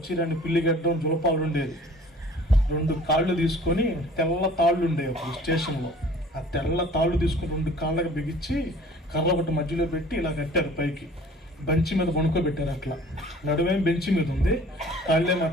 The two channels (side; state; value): both; normal; correlation 0.50